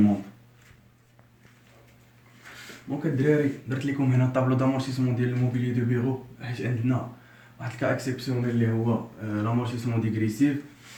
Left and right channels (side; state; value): both; identical; correlation 1.00